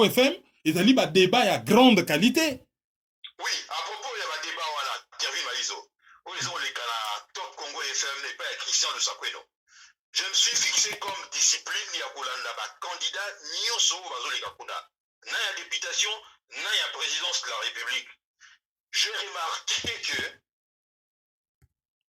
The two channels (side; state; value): both; identical; correlation 1.00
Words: FM, et ali ba débat ya grande qualité. Oui, à propos il y a ba débat wala Kervin Malizo. O ezo le kana Top Congo FM n'est pas Christian de Sakweno. Je me suis fixé comme discipline ya kolanda ba candidat nyonso bazo le kakuna. Na ya députation, na ya présidence de la République. J'ai